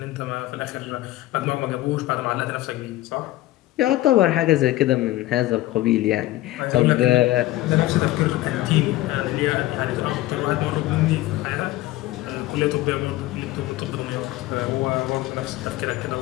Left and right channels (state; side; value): quieter; right; 16.4 dB